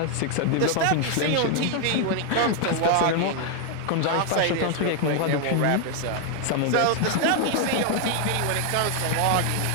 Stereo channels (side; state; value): both; different; correlation 0.00